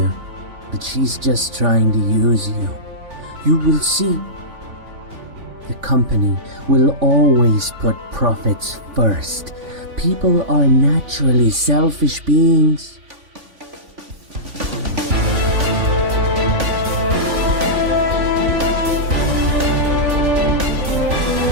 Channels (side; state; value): left; late; 3.5 ms